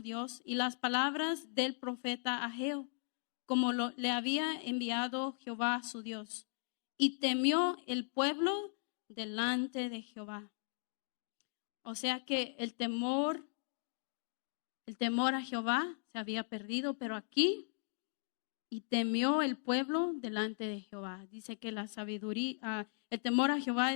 y las palabras del profeta Ageo, como le había enviado Jehová su Dios. Y temió el pueblo delante de Jehová. O sea que el temor a Jehová se había perdido, pero aquí, y temió el pueblo delante de Jehová. Dice que la sabiduría, el temor a Jehová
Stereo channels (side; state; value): right; silent; digital silence